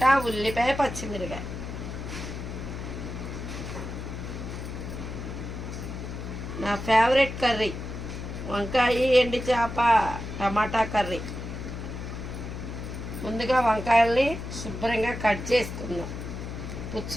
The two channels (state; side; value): noise; left; hum, 7 dB below the sound